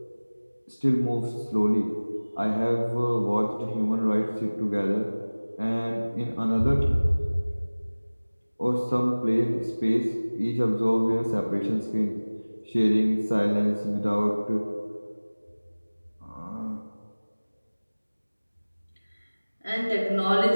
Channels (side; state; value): both; inverted; correlation -1.00